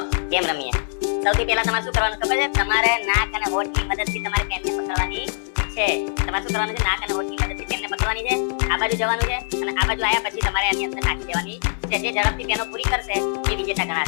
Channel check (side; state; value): right; silent; digital silence